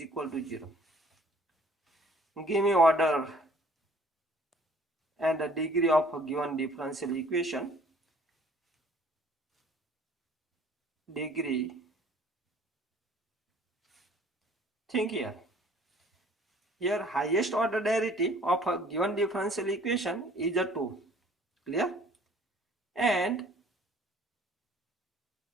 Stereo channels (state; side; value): normal; both; correlation 0.55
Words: to 0. Give me order and the degree of a given differential equation. Degree. Think here. Here highest order derivative of a given differential equation is a 2. Clear? And